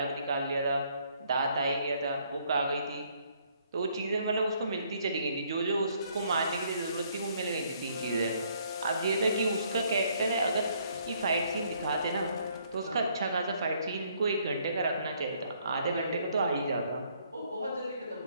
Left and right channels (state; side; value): inverted; both; correlation -0.67